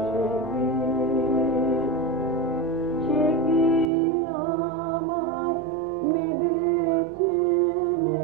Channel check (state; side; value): drops out; left; at 3.9 s